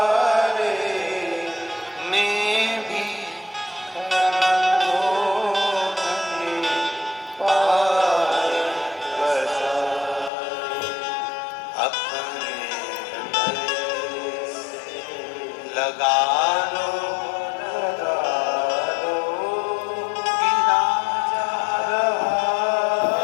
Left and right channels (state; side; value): drops out; right; at 10.3 s